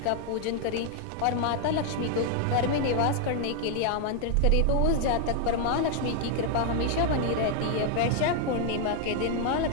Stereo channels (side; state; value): both; different; correlation 0.00